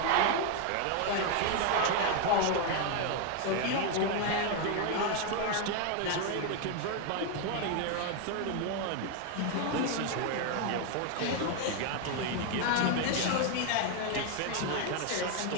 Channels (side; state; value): both; different; correlation 0.01